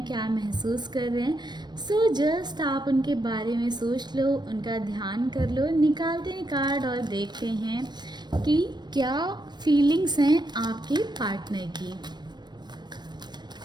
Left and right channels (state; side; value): late; left; 0.21 ms